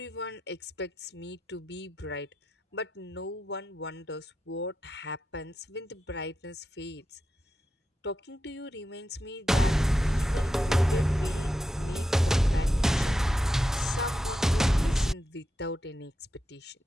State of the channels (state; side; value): normal; both; correlation 0.88